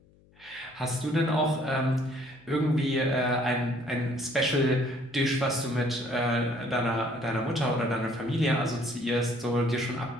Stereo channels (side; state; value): left; noise; hum, 29 dB below the sound